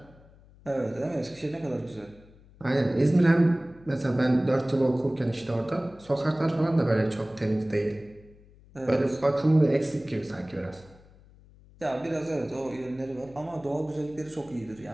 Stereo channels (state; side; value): noise; left; hum, 25 dB below the sound